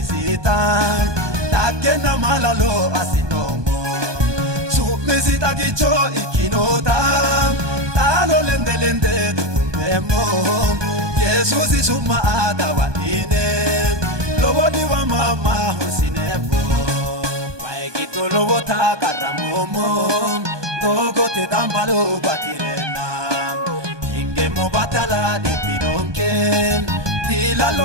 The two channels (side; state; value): left; late; 1.2 ms